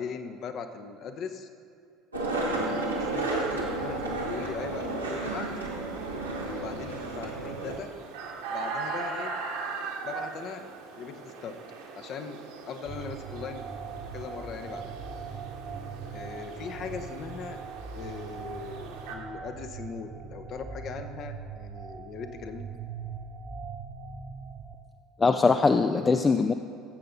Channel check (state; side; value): normal; both; correlation 0.59